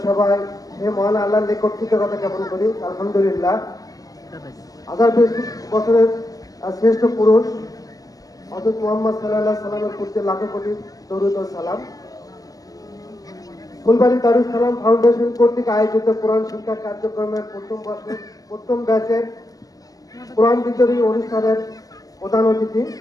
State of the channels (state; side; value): late; right; 0.17 ms